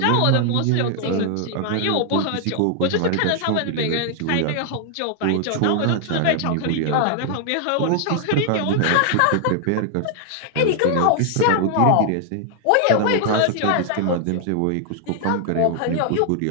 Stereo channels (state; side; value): different; both; correlation 0.00